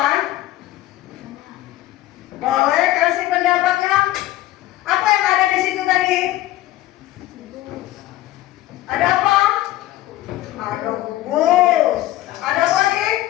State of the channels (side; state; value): right; quieter; 15.6 dB